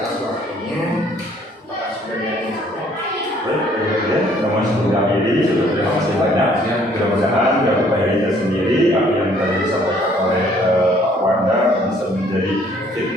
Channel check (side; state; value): both; normal; correlation 0.61